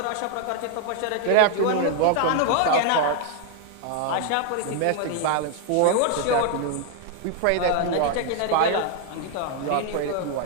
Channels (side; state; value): both; different; correlation 0.00